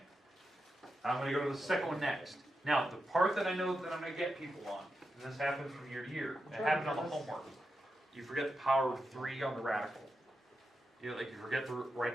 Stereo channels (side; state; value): both; normal; correlation 0.88